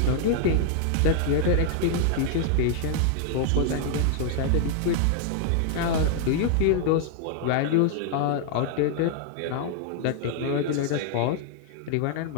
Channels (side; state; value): both; different; correlation -0.01